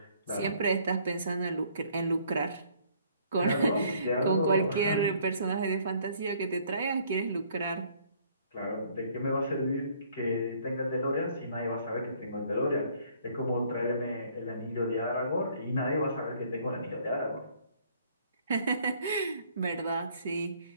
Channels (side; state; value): both; inverted; correlation -0.61